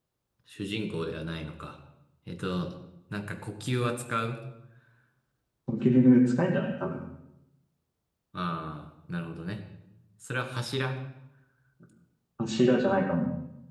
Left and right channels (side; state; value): both; identical; correlation 1.00